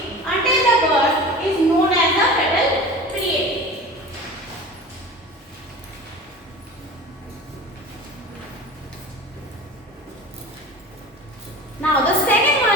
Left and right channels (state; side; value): normal; both; correlation 0.37